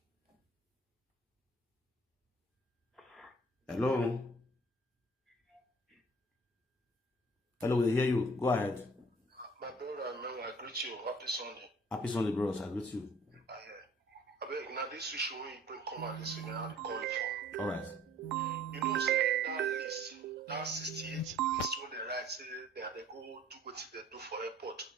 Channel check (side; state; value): both; normal; correlation 0.53